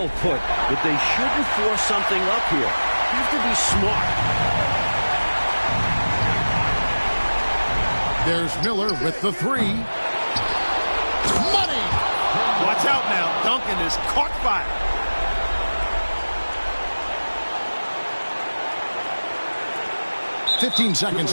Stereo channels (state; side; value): inverted; both; correlation -1.00